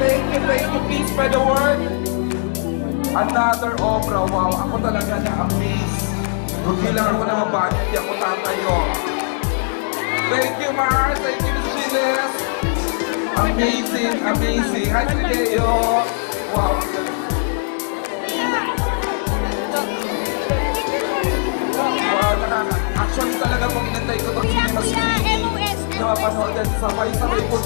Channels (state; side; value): silent; right; digital silence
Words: you. Please spread the word. Another opera. Wow. Ako talaga na-amaze. Kung kailangan ko na mabagay, hindi ako tatayo. Thank you, Mars. Thank you, Ms. Gilles. Amazing. Hi, Sileo. Wow. Actually talaga kung inantay ko itong cinema screening na mapanood at sabay-sabay po